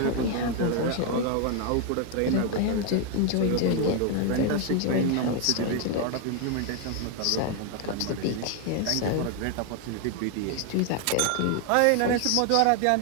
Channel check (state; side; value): different; both; correlation 0.01